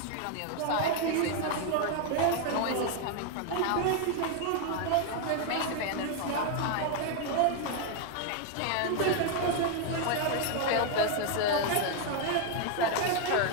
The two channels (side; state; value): both; different; correlation 0.00